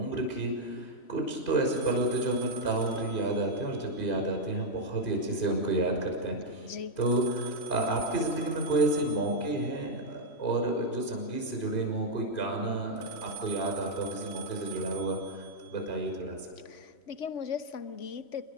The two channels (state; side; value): late; right; 3.1 ms